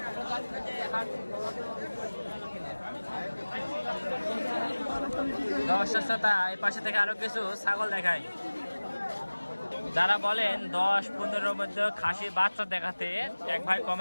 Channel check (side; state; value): both; inverted; correlation -1.00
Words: দর্শক শ্রোতা, এই পাশে থেকে আরো কিছু ছাগল দেখাই। যারা বলেন 10-15 মধ্যে খাসি বাচ্চা দেখাতে, এক ভাই